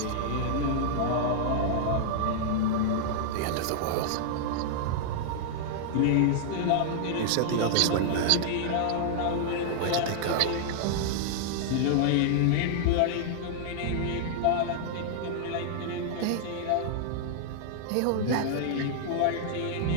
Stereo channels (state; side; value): different; both; correlation -0.01